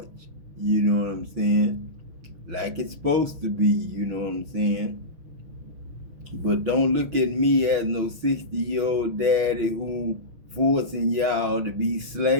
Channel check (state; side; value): late; left; 6.1 ms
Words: You know what I'm saying? Like it's supposed to be, you know what I'm saying? But don't look at me as no 60-year-old daddy who forcing y'all to be